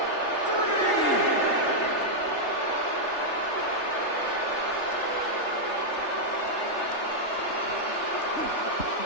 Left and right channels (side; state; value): right; late; 3.3 ms